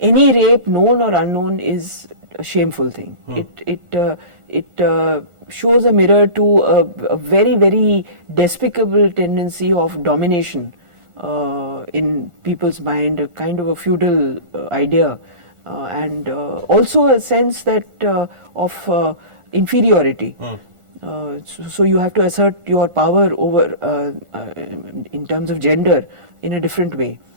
any rape, known or unknown, is a shameful thing. It shows a mirror to a very, very despicable tendency of domination in people's mind, a kind of a feudal idea, and also a sense that of inferiority. So you have to assert your power over in terms of gender in a different way.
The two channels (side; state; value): left; late; 1.4 ms